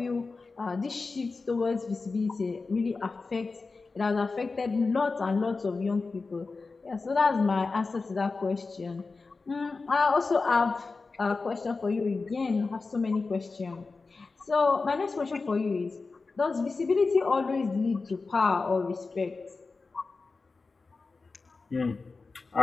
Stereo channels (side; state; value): right; quieter; 4.1 dB